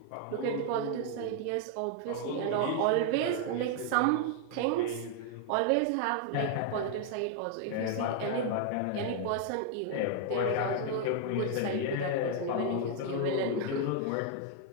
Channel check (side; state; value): both; different; correlation 0.00